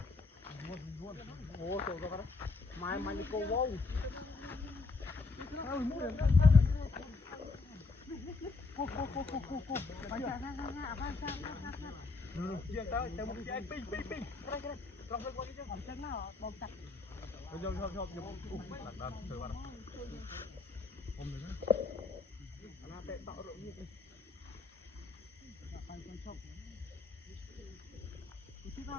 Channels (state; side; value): quieter; right; 4.0 dB